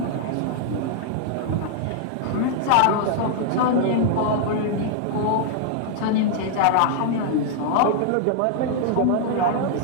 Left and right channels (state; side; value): different; both; correlation -0.01